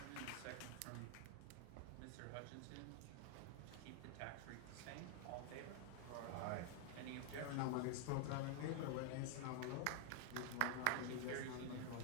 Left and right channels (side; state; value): both; different; correlation 0.00